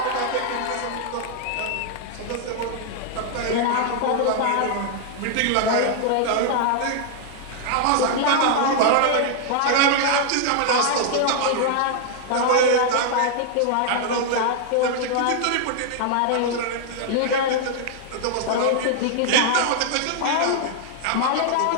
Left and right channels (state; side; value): different; both; correlation 0.00